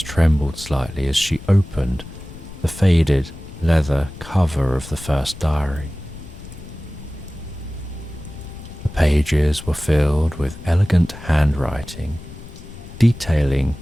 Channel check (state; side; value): noise; left; rumble, 15 dB below the sound